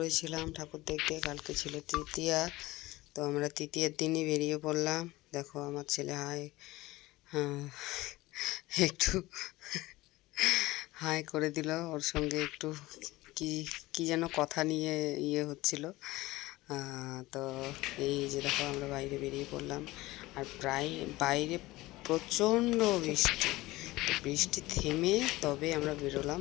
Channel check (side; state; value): right; quieter; 19.1 dB